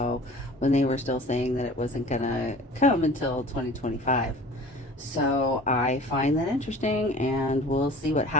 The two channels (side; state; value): both; normal; correlation 0.44